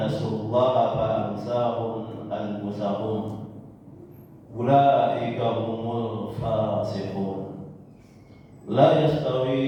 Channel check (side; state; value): both; identical; correlation 1.00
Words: الله فأنساهم أنفسهم أولئك هم الفاسقون. La